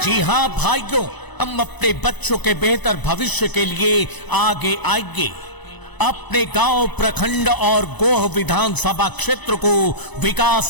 जी हाँ भाइयों, हम अपने बच्चों के बेहतर भविष्य के लिए आगे आएंगे। अपने गांव, प्रखंड और गोह विधानसभा क्षेत्र को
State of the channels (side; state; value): right; late; 1.0 ms